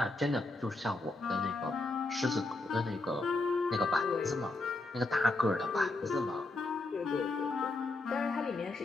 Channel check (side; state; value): right; quieter; 3.1 dB